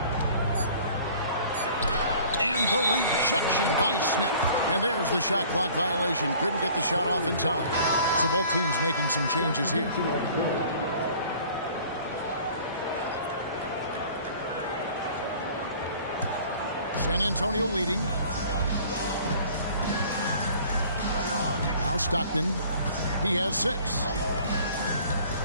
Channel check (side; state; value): both; inverted; correlation -0.50